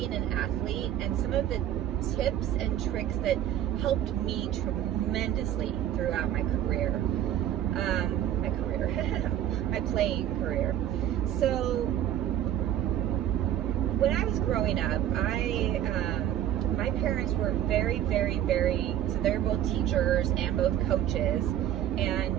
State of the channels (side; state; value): left; quieter; 11.3 dB